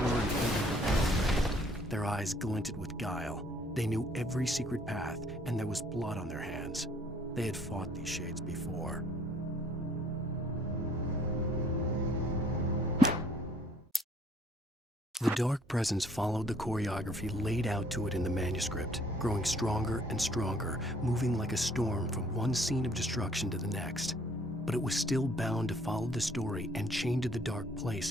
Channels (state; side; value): normal; both; correlation 0.60